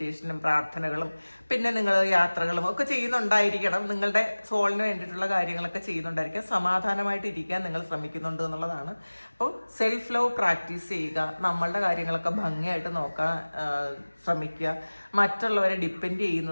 പ്രാർത്ഥനകളും പിന്നെ നിങ്ങൾ യാത്രകളും ഒക്കെ ചെയ്യുന്നുണ്ടായിരിക്കണം. നിങ്ങളുടെ സോളിന് വേണ്ടിയിട്ടുള്ള കാര്യങ്ങളൊക്കെ ചെയ്യുന്നുണ്ടായിരിക്കാം. സമാധാനമായിട്ട് ഇരിക്കാൻ നിങ്ങൾ ശ്രമിക്കുന്നുണ്ട് എന്നുള്ളതാണ്. അപ്പോൾ സെൽഫ് ലവ് പ്രാക്ടീസ് ചെയ്യുക. നമ്മളുടെ കാര്യങ്ങളൊക്കെ ഭംഗിയായിട്ട് നോക്കാൻ ശ്രമിക്കുക. മറ്റുള്ളവരെ ഡിപ്പെൻഡ്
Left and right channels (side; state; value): both; inverted; correlation -1.00